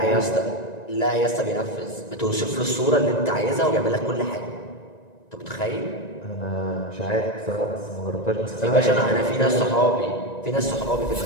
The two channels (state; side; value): late; right; 1.9 ms